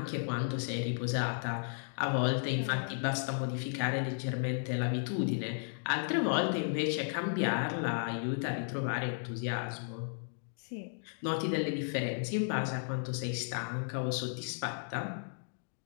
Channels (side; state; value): right; silent; digital silence